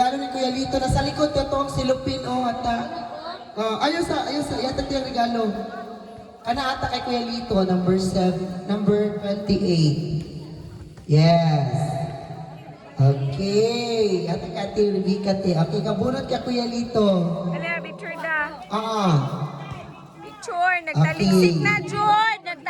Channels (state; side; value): identical; both; correlation 1.00